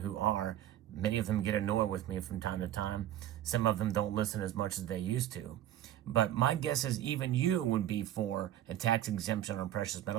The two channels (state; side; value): quieter; left; 12.3 dB